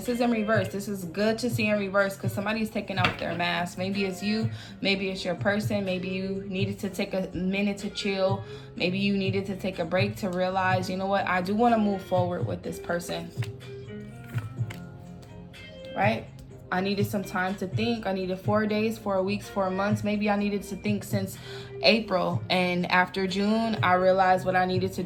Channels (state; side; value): identical; both; correlation 1.00